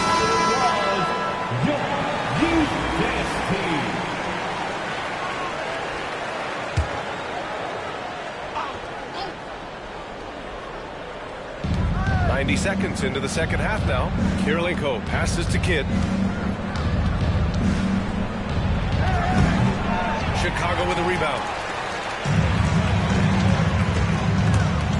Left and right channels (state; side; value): identical; both; correlation 1.00